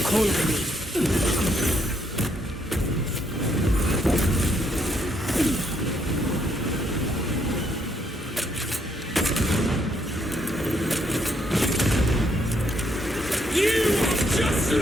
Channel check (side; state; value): both; normal; correlation 0.73